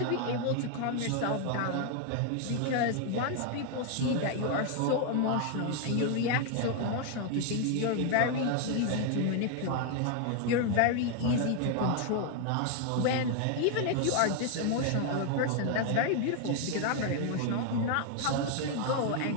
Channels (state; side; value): different; both; correlation 0.00